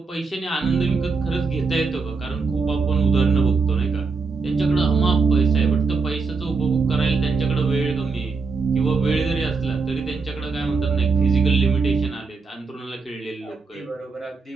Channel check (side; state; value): left; quieter; 4.5 dB